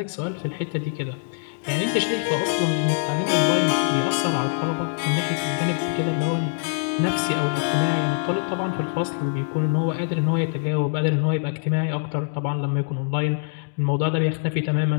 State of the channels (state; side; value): silent; right; digital silence